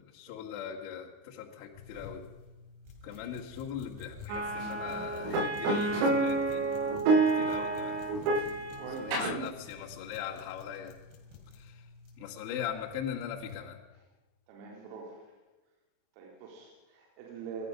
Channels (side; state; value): left; late; 29 ms